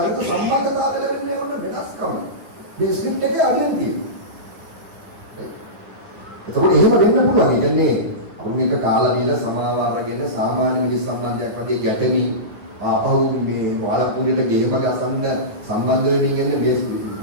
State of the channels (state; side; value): late; left; 9.9 ms